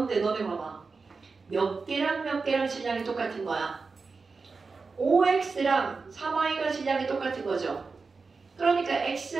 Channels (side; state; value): left; quieter; 4.4 dB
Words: 너네 봐봐. 몇 개랑 몇 개랑 질량이 똑같은 거야. 5x랑 3y가 질량이 똑같은 거죠. 그러니까 x